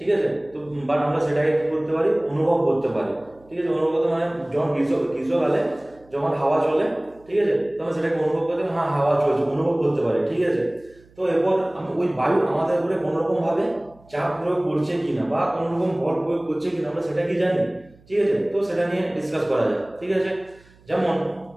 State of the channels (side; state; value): right; noise; hum, 28 dB below the sound